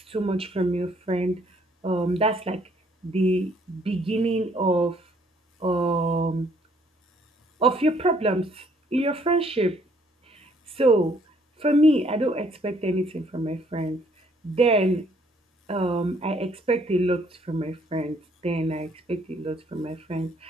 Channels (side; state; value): both; normal; correlation 0.64